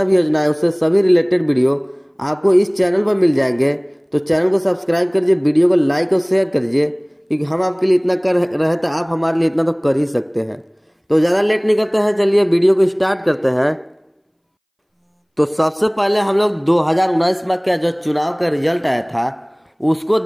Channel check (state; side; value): identical; both; correlation 1.00